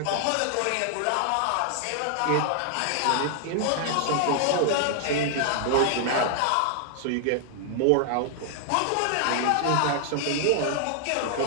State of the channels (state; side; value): different; both; correlation 0.00